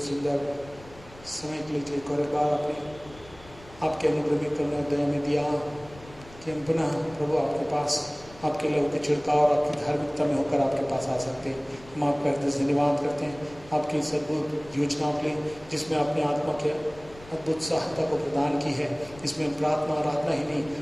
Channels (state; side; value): noise; left; rumble, 21 dB below the sound